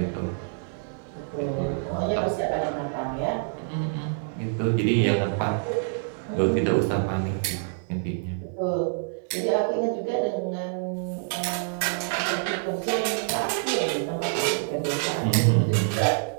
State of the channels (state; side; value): silent; left; digital silence